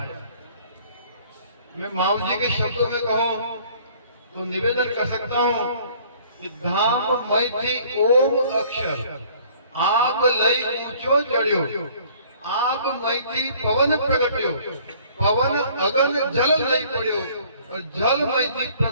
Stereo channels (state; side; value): inverted; both; correlation -0.55